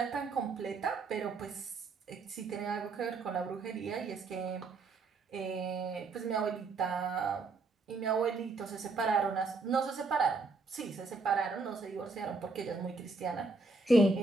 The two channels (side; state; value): left; quieter; 3.8 dB